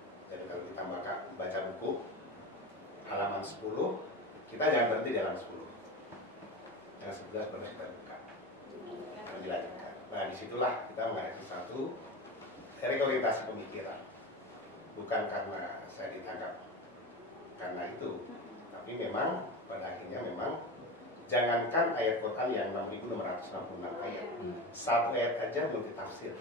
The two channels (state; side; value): normal; both; correlation 0.25